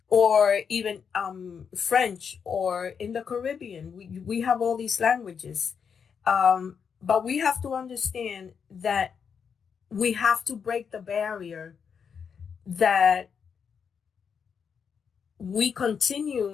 or even French, or in the Caribbean, we have all these languages. But we have to understand that we have to break the barrier that we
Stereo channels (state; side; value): quieter; right; 6.7 dB